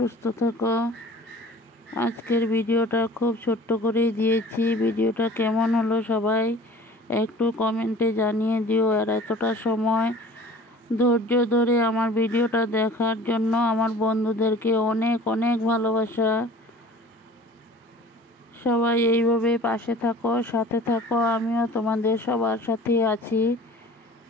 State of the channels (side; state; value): both; normal; correlation 0.45